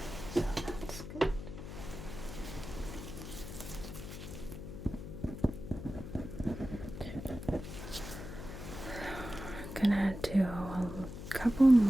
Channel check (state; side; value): noise; left; hum, 9 dB below the sound